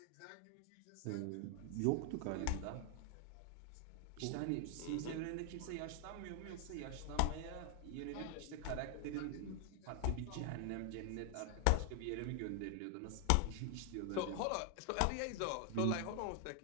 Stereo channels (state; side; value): different; both; correlation 0.00